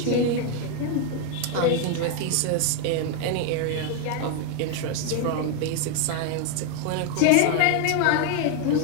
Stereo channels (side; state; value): both; different; correlation 0.01